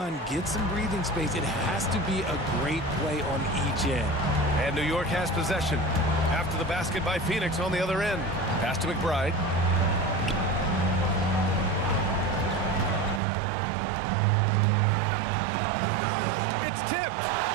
get some breathing space, it has to be a great play on each end. And New York has possession. After the basket by Phoenix on the other end. Pass to McBride. It's tipped.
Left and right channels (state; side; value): drops out; left; at 13.2 s